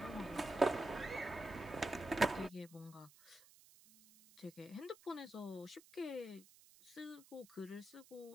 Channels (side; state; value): right; noise; hiss, 23 dB below the sound